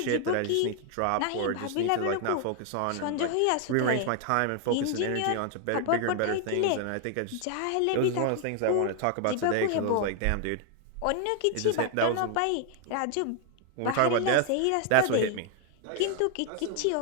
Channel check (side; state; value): both; different; correlation 0.00